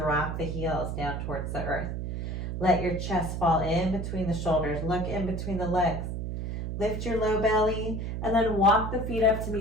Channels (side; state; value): right; noise; hum, 4 dB below the sound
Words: the heels down towards the earth. Let your chest fall in between the shoulders. Look in between the legs. Lift your low belly and then walk the feet up to